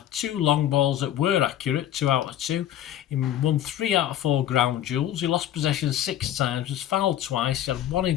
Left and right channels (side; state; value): right; quieter; 11.7 dB